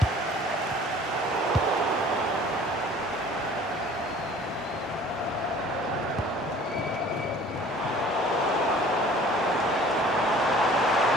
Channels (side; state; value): both; normal; correlation 0.49